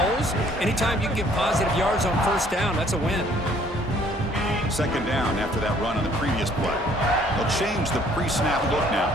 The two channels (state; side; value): normal; both; correlation 0.60